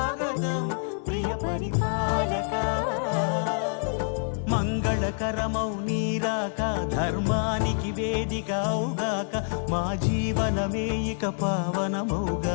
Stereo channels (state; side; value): silent; right; 60 dB below the other